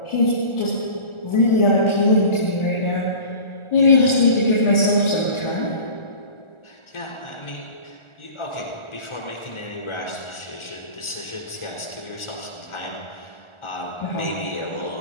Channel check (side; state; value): right; late; 1.4 ms